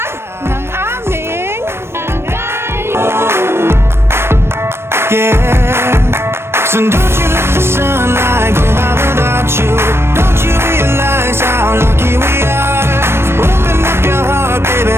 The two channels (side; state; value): left; late; 0.12 ms